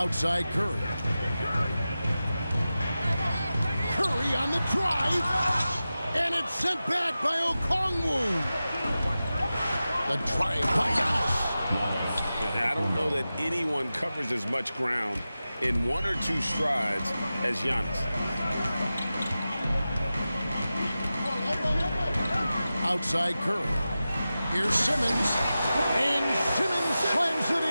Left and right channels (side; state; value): both; inverted; correlation -0.94